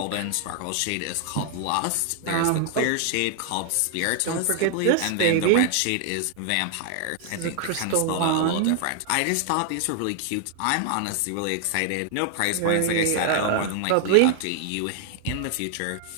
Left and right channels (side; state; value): both; different; correlation 0.00